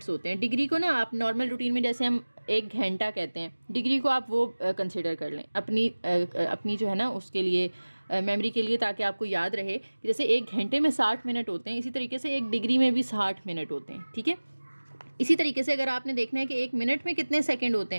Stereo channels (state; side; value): inverted; both; correlation -1.00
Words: होते हैं। डिग्री को ना आप नॉर्मल रूटीन में जैसे हम 1 घंटा कहते हैं, डिग्री को आप वो कंसिडर कर लें अपनी जो है ना उसके लिए मेमोरी के लिए, ताकि आपको याद रहे कि जैसे 1 घंटे में 60 मिनट होते हैं, इसी तरीके से 1 डिग्री में भी 60 मिनट होते हैं, ठीक है। इसी तरीके से अगर आपने देखना है कि 1 मिनट में कितने सेकंड होते